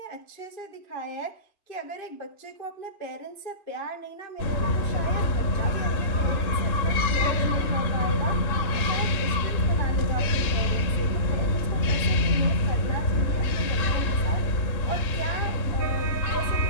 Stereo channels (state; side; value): late; right; 3.7 ms